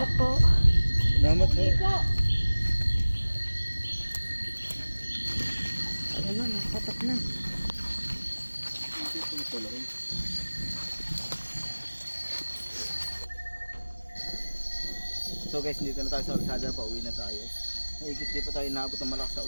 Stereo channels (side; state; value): both; inverted; correlation -1.00